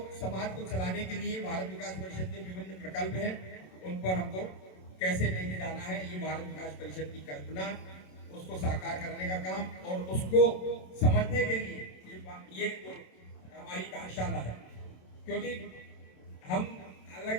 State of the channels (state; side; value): late; right; 27 ms